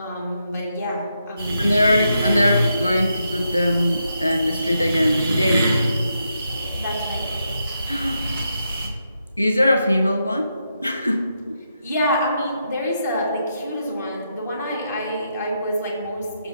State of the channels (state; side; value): inverted; both; correlation -0.82